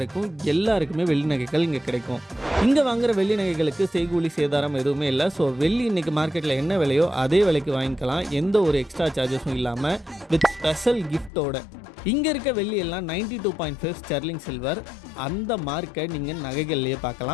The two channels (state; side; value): drops out; right; at 11.3 s